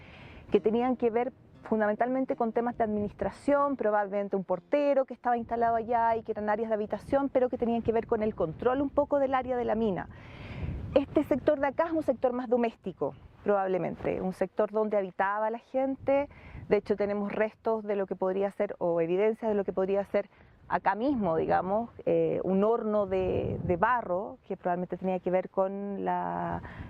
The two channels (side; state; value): both; identical; correlation 1.00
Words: que tenían que ver fundamentalmente con temas de administración, probablemente un portero que estaba instalado allá y que eran áreas de habitación, pero que tenían que ver con el control un poco del área de la mina. Este sector de acá es un sector más doméstico, probablemente, un sector donde habitaba la gente. De hecho tenemos restos de lo que podría ser, o evidencia de lo que podría ser acá mismo, digamos, un horno de barro que probablemente tenía que ver con